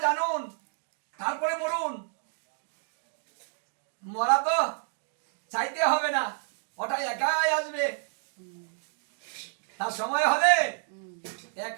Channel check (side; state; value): left; silent; 58 dB below the other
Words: জানুন, তারপরে মরুন। মরা তো চাইতে হবে না, ওটা একাই আসবে। তার সময় হলে